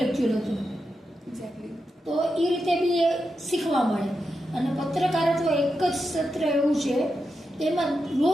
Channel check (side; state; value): both; normal; correlation 0.87